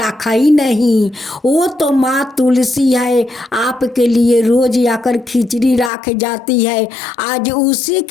ही नहीं। वो तो माँ तुलसी है, आपके लिए रोज आकर खिचड़ी रख जाती है। आज उसी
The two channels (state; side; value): drops out; right; at 5.9 s